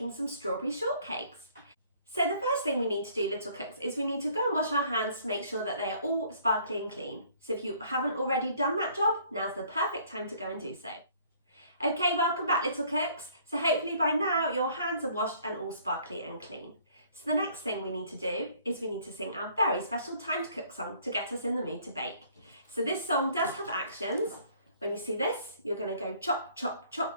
some strawberry shortcakes. So the first thing we need to do, little cooks, is we need to go and wash our hands to make sure that they are all sparkly and clean. So if you haven't already done that job, now's the perfect time to go and do so. Okay, welcome back, little cooks. So hopefully by now your hands are washed and all sparkly and clean. So the next thing we need to do is we need to sing our very special Time to Cook song to get us in the mood to bake. So this song does have actions. When you see this, you're going to go chop, chop,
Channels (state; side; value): inverted; both; correlation -0.59